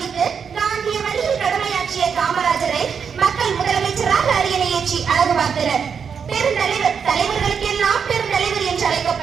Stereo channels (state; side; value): quieter; left; 6.6 dB